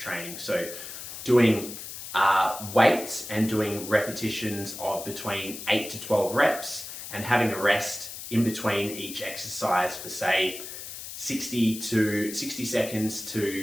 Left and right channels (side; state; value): left; noise; hiss, 10 dB below the sound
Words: So doing weights and doing repetitions of between 8 to 12 reps and having a rest in between each exercise for say 60 seconds